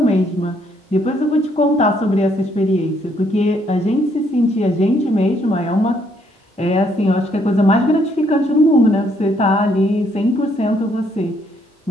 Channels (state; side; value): normal; both; correlation 0.70